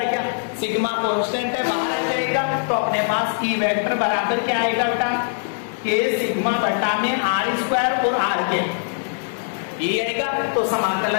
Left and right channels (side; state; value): right; silent; 64 dB below the other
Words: क्या? सिग्मा कांस्टेंट है, बाहर आ जाएगा, तो अपने पास e वेक्टर बराबर क्या आएगा बेटा? k सिग्मा बटा में r² और r, ये आएगा। तो